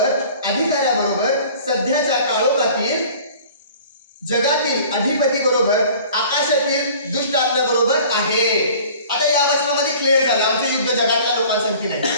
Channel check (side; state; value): both; inverted; correlation -0.47